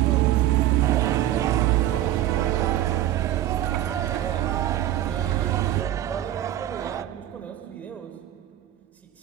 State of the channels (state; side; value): quieter; left; 13.0 dB